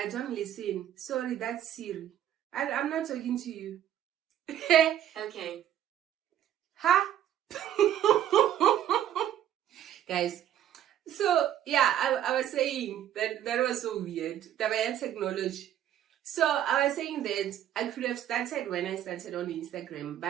don't listen. Sorry, that's Siri. I'm not talking to you. Okay. Huh? Guys, so yeah, I was saying that was so weird. The technology. So I was saying that I could have started when I started on Instagram,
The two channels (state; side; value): quieter; left; 11.1 dB